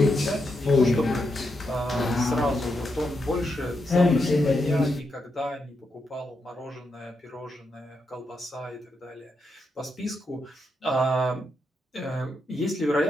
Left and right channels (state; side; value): normal; both; correlation 0.83